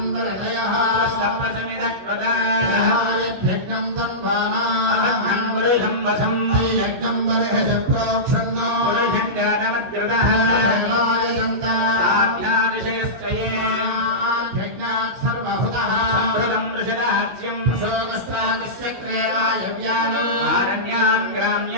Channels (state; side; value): late; left; 16 ms